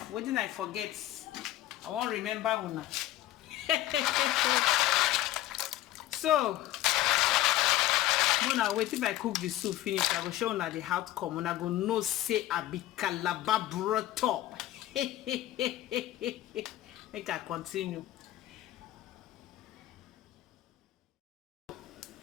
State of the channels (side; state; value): right; quieter; 14.7 dB